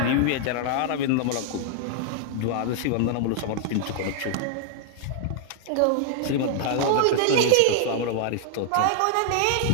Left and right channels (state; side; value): different; both; correlation -0.01